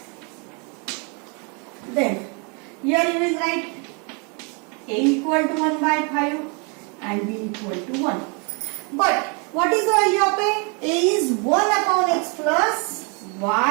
Then here you will write a equal to 1 by 5 and b equal to 1. But what is the value of a? A is 1 upon x plus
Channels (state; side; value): quieter; left; 34.3 dB